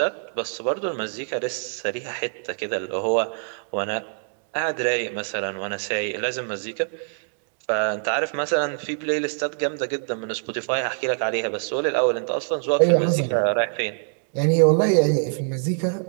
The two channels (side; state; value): left; silent; digital silence